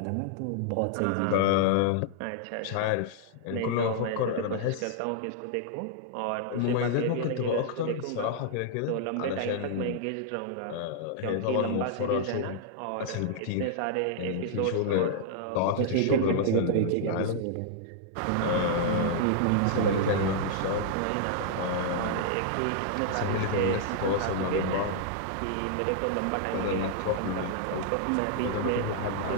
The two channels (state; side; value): different; both; correlation -0.01